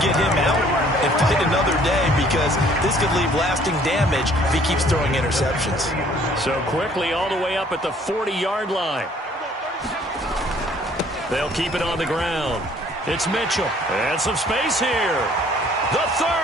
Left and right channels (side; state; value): both; normal; correlation 0.58